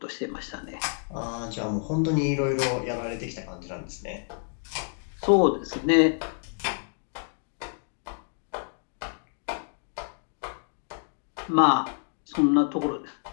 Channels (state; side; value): silent; right; 59 dB below the other